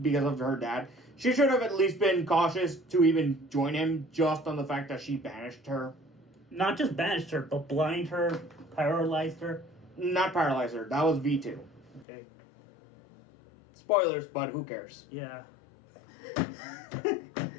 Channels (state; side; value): drops out; right; at 12.1 s